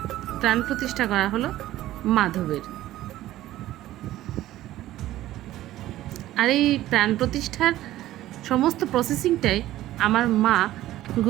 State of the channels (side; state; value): left; quieter; 14.7 dB